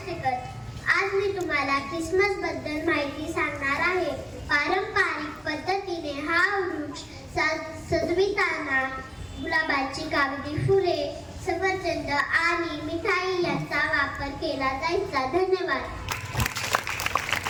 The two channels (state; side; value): identical; both; correlation 1.00